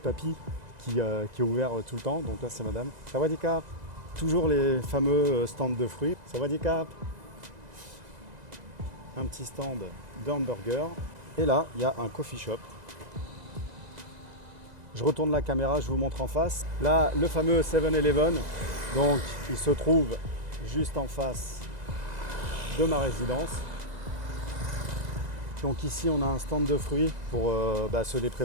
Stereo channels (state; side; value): late; left; 2.0 ms